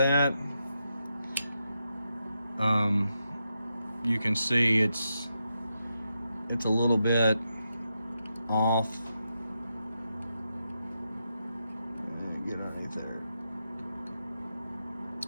You can see it's a little bit off. Get underneath there.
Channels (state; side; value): inverted; both; correlation -0.86